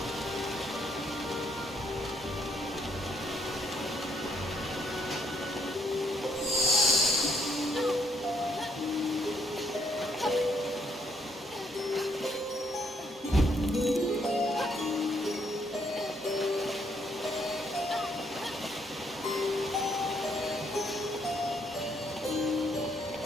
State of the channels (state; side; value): normal; both; correlation 0.71